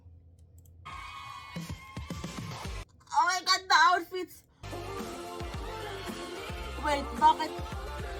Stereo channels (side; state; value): both; identical; correlation 1.00